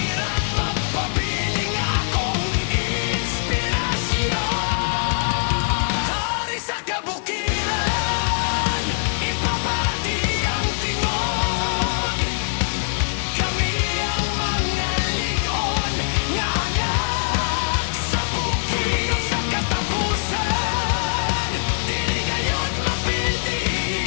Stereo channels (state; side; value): silent; right; 64 dB below the other